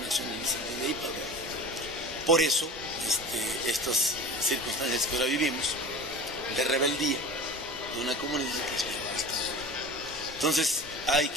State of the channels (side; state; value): both; normal; correlation 0.35